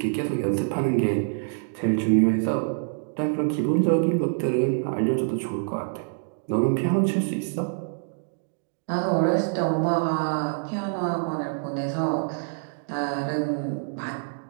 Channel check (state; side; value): silent; left; digital silence